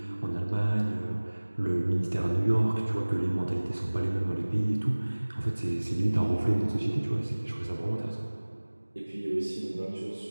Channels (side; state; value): both; inverted; correlation -1.00